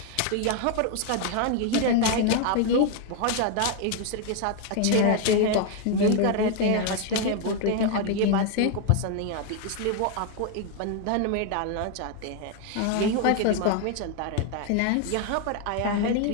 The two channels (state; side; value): different; both; correlation 0.01